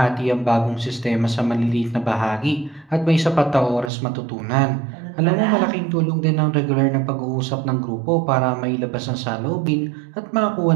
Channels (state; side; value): drops out; left; at 3.9 s